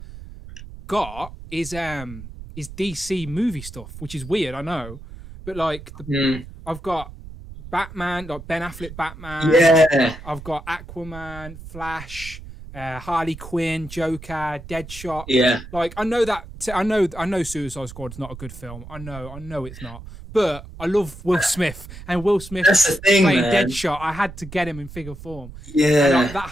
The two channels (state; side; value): noise; right; rumble, 14 dB below the sound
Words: got is DC movie stuff, which is weird, I know, but like I've got Batman, like Ben Affleck Batman. Yeah. I've got Aquaman, Flash, Harley Quinn, Joker, Deadshot. Yeah. Like I know Suicide Squad's not a good film. I know it's not. But I love Will Smith, and Will Smith playing Deadshot. I had to get him in figure form. Yeah. And, like, that